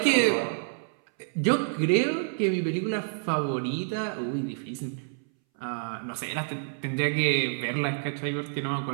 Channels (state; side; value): silent; left; 59 dB below the other